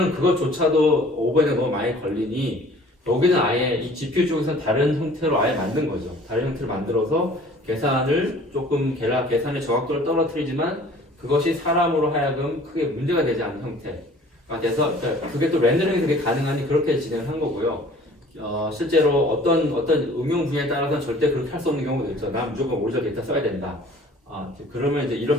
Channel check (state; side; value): normal; both; correlation 0.50